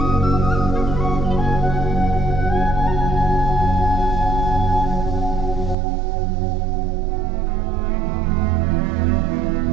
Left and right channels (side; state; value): left; drops out; at 5.8 s